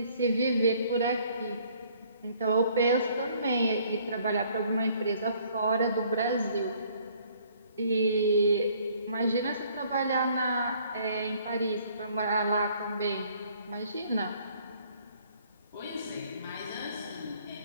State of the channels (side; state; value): both; inverted; correlation -0.60